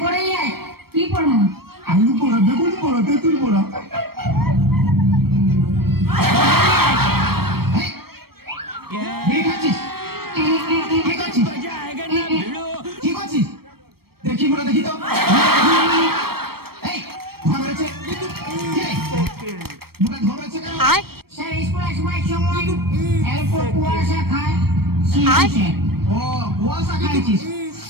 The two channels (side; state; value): left; late; 0.95 ms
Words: পড়ে যাই। কি পড়াবি? আলু পড়া, বেগুন পড়া, তেঁতুল পড়া। দেখি বলে দেখি তো স্যার স্কুল আসবার সময় এরপর কুয়াশা খায়। ও কুয়াশা খাইছিস?